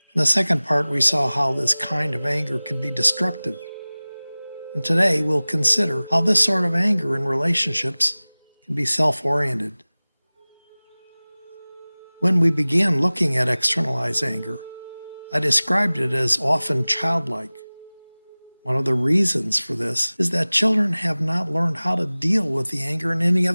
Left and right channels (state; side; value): inverted; both; correlation -0.99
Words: In the second part, we saw how this kind of anger can be destructive. And today, we'll consider how this sort of anger in relationships can be self-oriented. When we began looking at externalized anger, I described it as often childlike. One of the reasons for this is that children have not learned how to deal with the anger in any